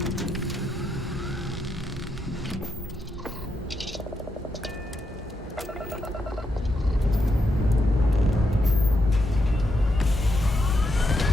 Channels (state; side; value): normal; both; correlation 0.82